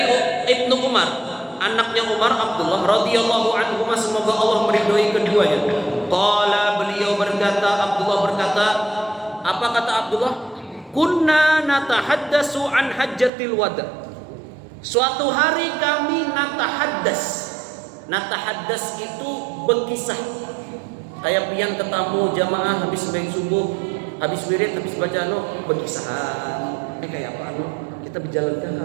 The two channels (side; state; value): left; drops out; at 13.3 s